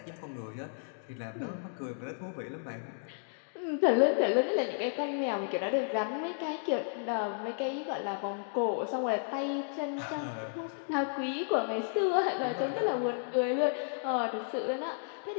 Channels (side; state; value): right; silent; digital silence